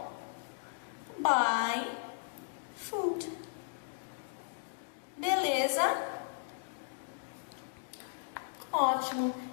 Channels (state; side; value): silent; right; digital silence